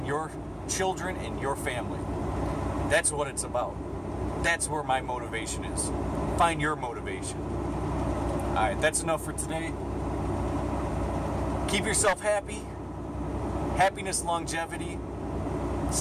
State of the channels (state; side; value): identical; both; correlation 1.00